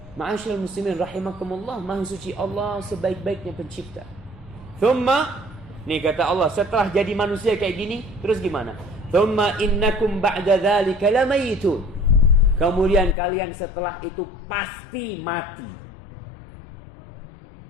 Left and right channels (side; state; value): right; drops out; at 13.2 s